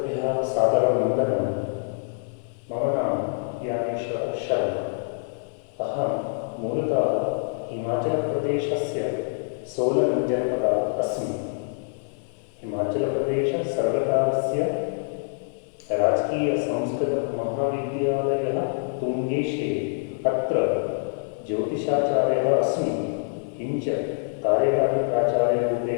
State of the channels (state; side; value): silent; right; 56 dB below the other